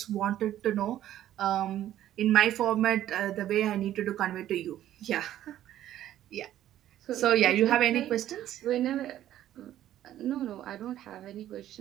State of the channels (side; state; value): left; quieter; 12.4 dB